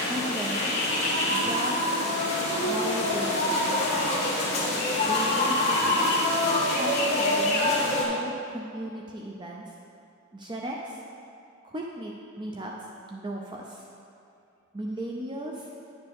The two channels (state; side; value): normal; both; correlation 0.01